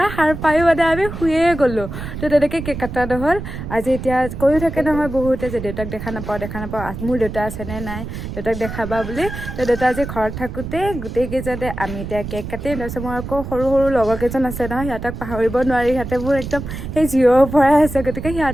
সাৰ পায়ো মানে আমি শুয়ে গ'লোঁ। তো তেনেকৈ কেক কটা নহ'ল। আজি এতিয়া কৈও থাকে নহয় বহুতে যে দেউতাক দেখা নাপাওঁ, মোৰ দেউতা আছেনে নাই, দেউতাক দেখাবা বুলি। তো দেউতা আজি ঘৰত থাকোঁতে গোটেইকেইজনে আমি এতিয়া কেক কাটিম। তাৰপিছত মোৰ আকৌ সৰু সৰু লগৰ কেইজন আছে নহয়, সিহঁতক পাহৰিব নোৱাৰি, সিহঁতে মোৰ একদম সেই জিৰৰ পৰাই আছে। গতিকে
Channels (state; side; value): noise; right; rumble, 8 dB below the sound